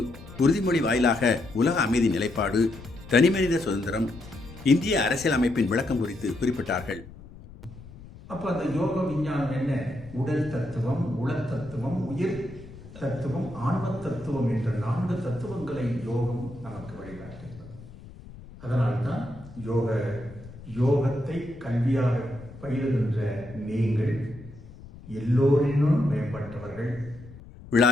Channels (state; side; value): noise; left; rumble, 17 dB below the sound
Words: உறுதிமொழி வாயிலாக உலக அமைதி நிலைப்பாடு, தனிமனித சுதந்திரம், இந்திய அரசியல் அமைப்பின் விளக்கம் குறித்து குறிப்பிட்டார்கள். அப்ப அந்த யோக விஞ்ஞானம் என்ன? உடல் தத்துவம், உள தத்துவம், உயிர் தத்துவம், ஆன்ம தத்துவம் என்ற 4 தத்துவங்களை யோகம் நமக்கு வழிகாட்டுகிறது. அதனால்தான் யோகத்தை கல்வியாக பயிலுகின்ற நீங்கள் எல்லோரினும் மேம்பட்டவர்கள்.